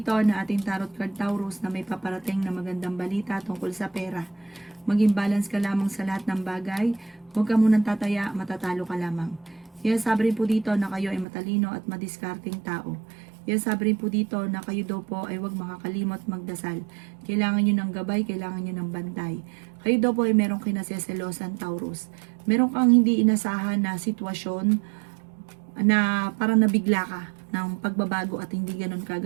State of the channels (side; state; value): left; drops out; at 11.2 s